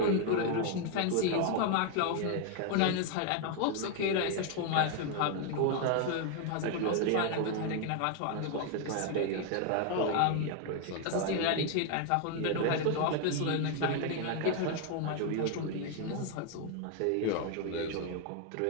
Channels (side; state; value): both; different; correlation 0.00